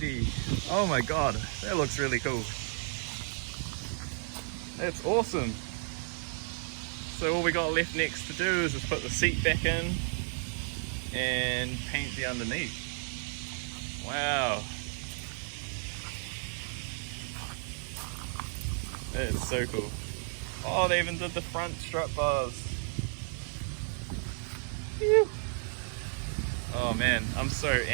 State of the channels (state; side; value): silent; left; 56 dB below the other